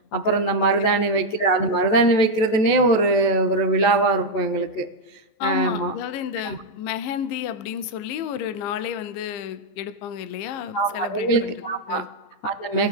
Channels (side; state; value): right; late; 14 ms